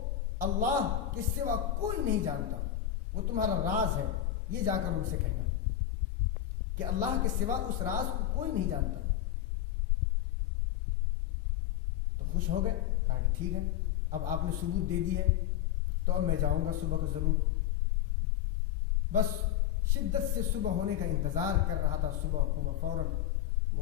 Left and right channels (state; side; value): quieter; right; 11.6 dB